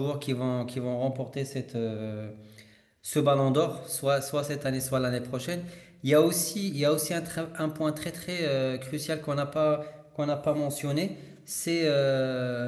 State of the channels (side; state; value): both; identical; correlation 1.00